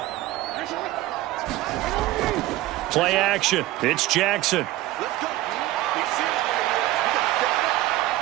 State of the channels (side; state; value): left; quieter; 16.3 dB